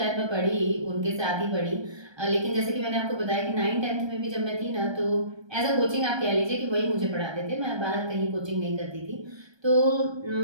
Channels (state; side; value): late; left; 1.3 ms